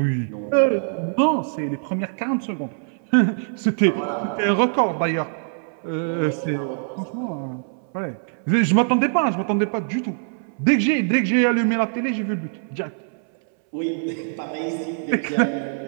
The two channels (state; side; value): silent; left; 62 dB below the other